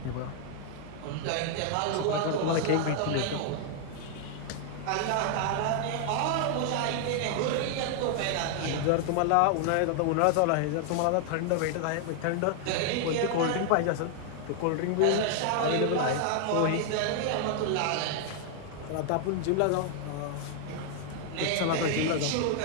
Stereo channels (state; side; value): different; both; correlation 0.00